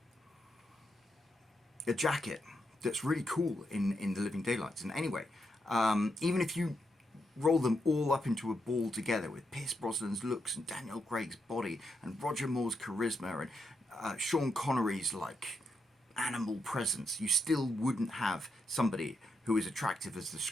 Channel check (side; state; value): both; normal; correlation 0.82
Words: a jacket that's really cool in The Living Daylights. And anyway, even if you roll them all up into a ball together with Pierce Brosnan's looks and Daniel Craig's body and Roger Moore's charisma and Sean Connery's animal presence, you still wouldn't have somebody who who is attractive as the